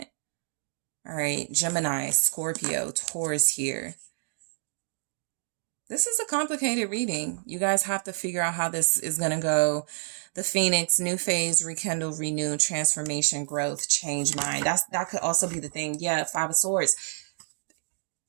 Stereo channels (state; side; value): silent; left; digital silence